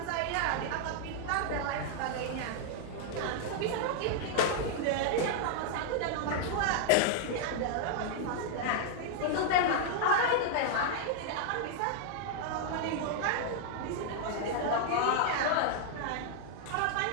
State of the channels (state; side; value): different; both; correlation -0.01